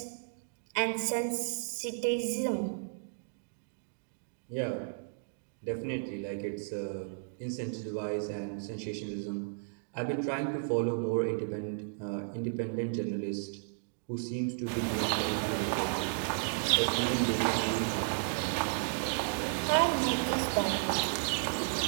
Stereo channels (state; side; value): silent; left; digital silence